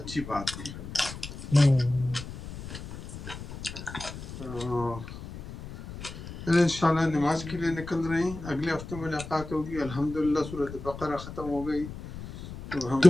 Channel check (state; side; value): noise; left; rumble, 10 dB below the sound